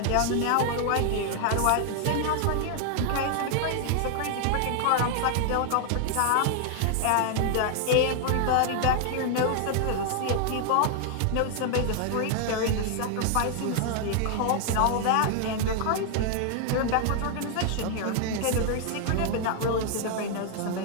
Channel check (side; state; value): both; different; correlation 0.00